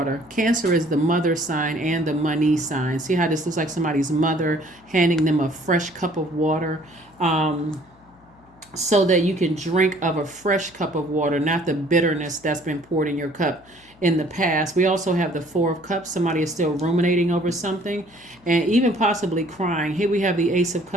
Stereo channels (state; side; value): noise; left; hum, 29 dB below the sound